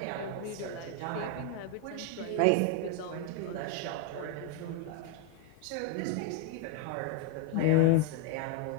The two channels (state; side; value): different; both; correlation 0.01